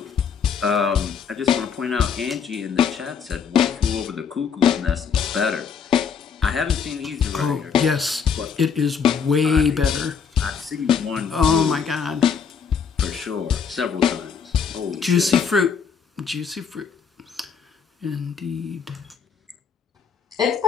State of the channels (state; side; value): quieter; right; 6.5 dB